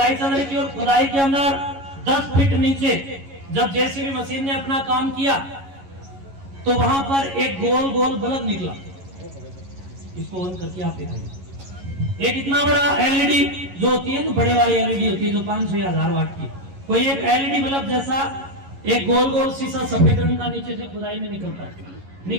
चल रही थी और खुदाई के अंदर 10 फीट नीचे जब जेसीबी मशीन ने अपना काम किया तो वहां पर एक गोल गोल बल्ब निकला। इसको ऑन करके आप दिखाइए। एक इतना बड़ा एलईडी जो होती है ना, बड़े वाली एलईडी होती है जो 500 या 1000 वाट की, कोई एक एलईडी बल्ब जैसा एक गोल गोल शीशा सफेद रंग का नीचे से खुदाई में निकलता है।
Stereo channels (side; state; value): left; late; 11 ms